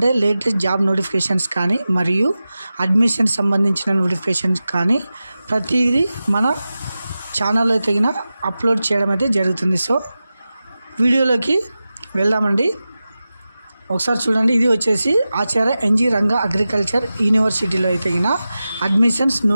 లేటెస్ట్ జాబ్ నోటిఫికేషన్స్ కానీ మరియు అడ్మిషన్ సంబంధించిన నోటిఫికేషన్స్ కానీ ప్రతిదీ మన ఛానల్లో తగిన అప్లోడ్ చేయడం అయితే జరుగుతుంది. సో వీడియోలోకి వెళ్దామండి. ఒకసారి చూడండి, ఇది వచ్చేసి ఆచార్య ఎన్జీ రంగా అగ్రికల్చర్ యూనివర్సిటీలో తగిన అడ్మిషన్స్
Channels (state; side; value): inverted; both; correlation -0.94